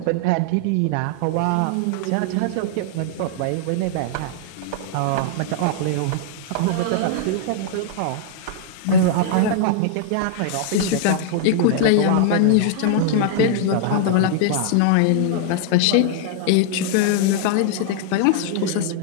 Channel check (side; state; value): both; different; correlation -0.01